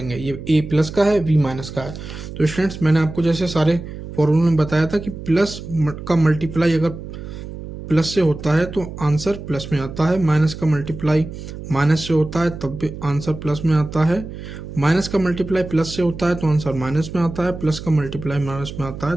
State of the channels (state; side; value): noise; right; hum, 11 dB below the sound